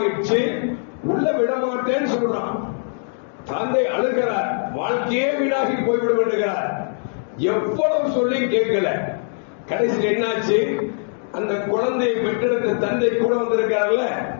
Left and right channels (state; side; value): silent; right; 64 dB below the other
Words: உள்ள விட மாட்டேன்னு சொல்றான். தந்தை அழுகிறார், வாழ்க்கையே வீணாகி போய்விடும் என்கிறார். எவ்வளவு சொல்லி கேட்கல. கடைசியில் என்னாச்சு, அந்த குழந்தையை பெற்றெடுத்த தந்தை கூட வந்திருக்காருல்ல,